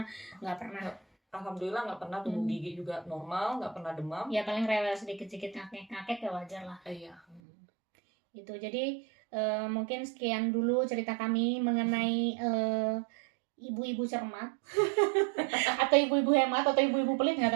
nggak pernah. Alhamdulillah nggak pernah, tumbuh gigi juga normal, nggak pernah demam. Ya paling rewel sedikit-sedikit, ngakek ya wajar lah. Iya. Itu jadi mungkin sekian dulu cerita kami mengenai ibu-ibu cermat atau ibu-ibu hemat atau ibu-ibu pelit, nggak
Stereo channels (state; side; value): drops out; left; at 7.4 s